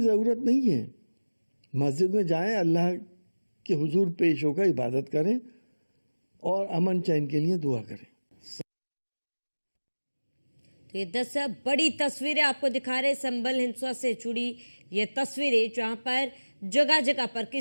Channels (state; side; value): inverted; both; correlation -1.00